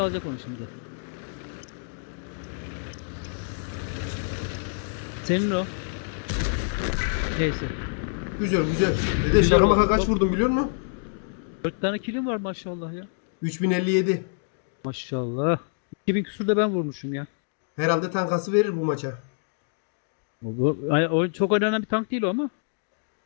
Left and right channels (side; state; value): right; silent; digital silence